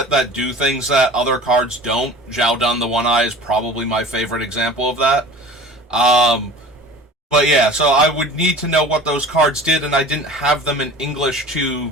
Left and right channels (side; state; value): both; normal; correlation 0.40